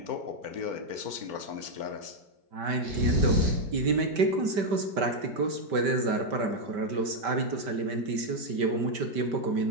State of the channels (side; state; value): left; late; 5.1 ms